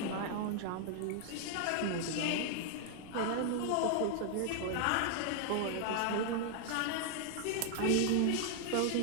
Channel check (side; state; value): both; different; correlation 0.00